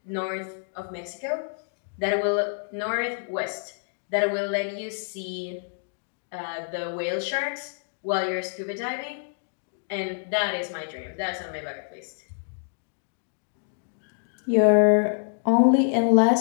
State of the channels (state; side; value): silent; right; digital silence